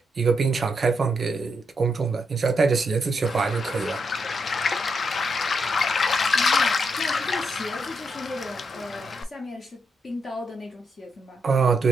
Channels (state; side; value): normal; both; correlation 0.80